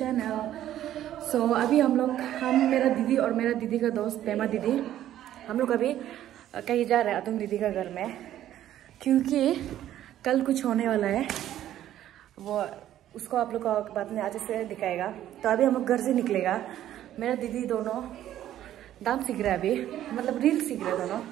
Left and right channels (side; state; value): left; quieter; 12.2 dB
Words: So अभी हम मेरा दीदी और मेरा दीदी का दोस्त पेमा दीदी, हम लोग अभी कहीं जा रहे हैं अतुम दीदी का घर में, क्योंकि कल कुछ होने वाला है। वो उसको आप लोग का बाद में आज से दिखाएगा। तो अभी हम लोग घर से निकलेगा। मेरा दीदी दोनों डांस सीख रहे हैं अभी, मतलब रील सीख रहे हैं दोनों।